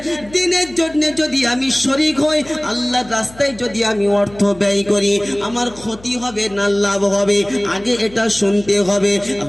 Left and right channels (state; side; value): noise; left; hum, 21 dB below the sound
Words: দিনের জন্য যদি আমি শরীক হই, আল্লাহর রাস্তায় যদি আমি অর্থ ব্যয় করি, আমার ক্ষতি হবে না লাভ হবে? আগে এটা শুনতে হবে।